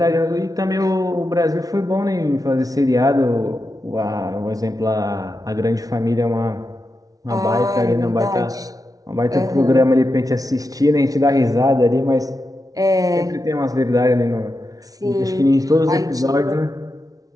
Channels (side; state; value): left; late; 0.18 ms